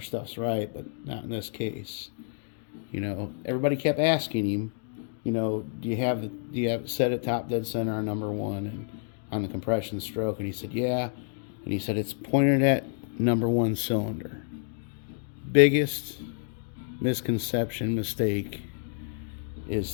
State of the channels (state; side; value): silent; right; digital silence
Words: stuff's right, but not in this case. Everybody kept asking him, do you have it set at top dead center on number one and on the compression stroke? And he said, yeah. And he said, it's pointed at number one cylinder. Biggest misconception, mistake